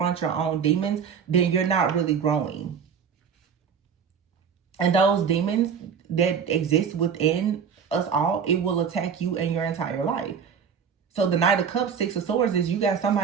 your own demons, then you're not really growing. And those demons that exist within us all, it will attack you and your entire life. So the Knight of Cups, Six of Swords, is you got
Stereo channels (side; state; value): left; quieter; 6.9 dB